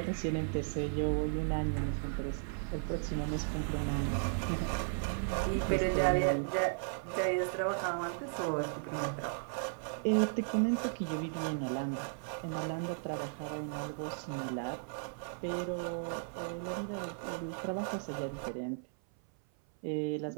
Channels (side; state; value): left; silent; 54 dB below the other